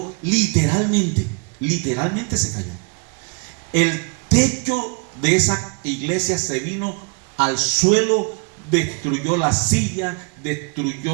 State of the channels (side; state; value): left; quieter; 34.5 dB